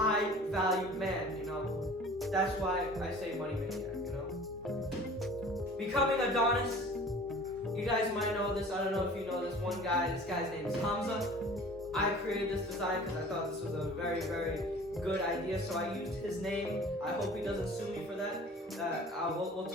valued man, you know, that's why I say Money Maniac, you know. Becoming Adonis. You guys might know this. I don't know if you know this one guy. This guy's name is Hamza. I created this design because I thought this was a very, very good idea. So I used his name. I hope he doesn't sue me for that. We'll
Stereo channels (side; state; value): both; normal; correlation 0.45